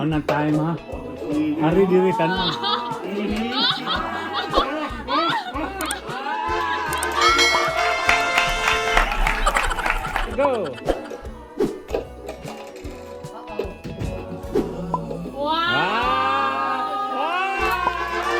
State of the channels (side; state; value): both; identical; correlation 1.00